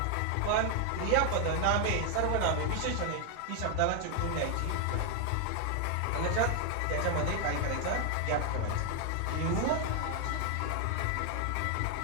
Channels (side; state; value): both; different; correlation 0.00